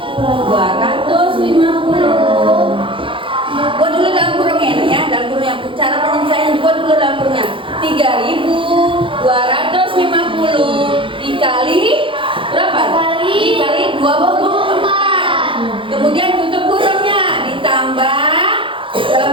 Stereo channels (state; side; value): late; left; 0.25 ms